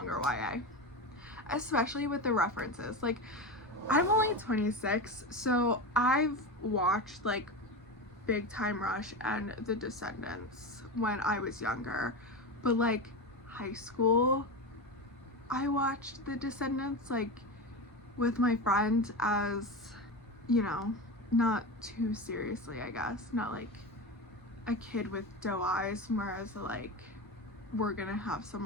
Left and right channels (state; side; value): normal; both; correlation 0.21